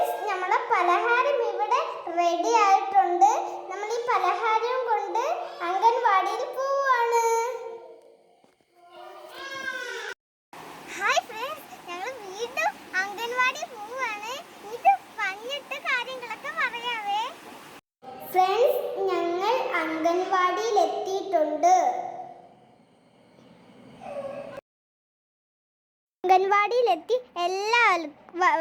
നമ്മുടെ പലഹാരം ഇവിടെ റെഡി ആയിട്ടുണ്ട്. നമ്മൾ ഈ പലഹാരം കൊണ്ട് അംഗൻവാടിയിൽ പോവാണ്. ഹായ് ഫ്രണ്ട്സ്, ഞങ്ങൾ വീണ്ടും അംഗൻവാടി പോവാണ്. ഇത് വന്നിട്ട് കാര്യങ്ങളൊക്കെ പറയാവേ. ഫ്രണ്ട്സ്, ഞങ്ങൾ അംഗൻവാടിയിൽ എത്തിയിട്ടുണ്ട്. അംഗൻവാടിയിലെത്തി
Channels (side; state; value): both; identical; correlation 1.00